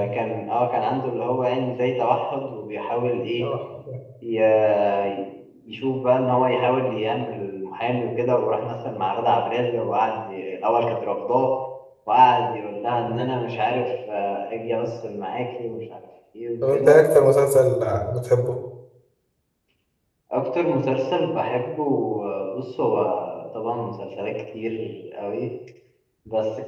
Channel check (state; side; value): identical; both; correlation 1.00